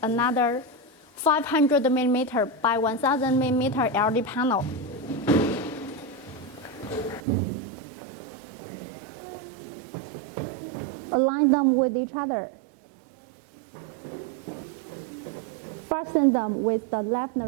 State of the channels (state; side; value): drops out; left; at 7.2 s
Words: another 500mm by 1000mm LED panel. Align them with each other. Fasten them with the left